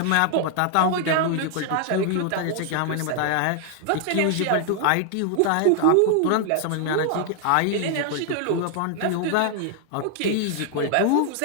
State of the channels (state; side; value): different; both; correlation 0.00